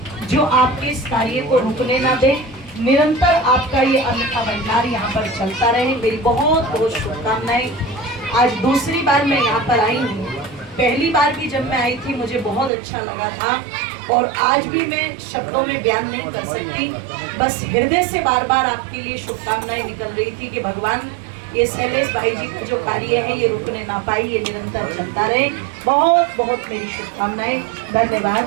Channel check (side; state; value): left; drops out; at 12.7 s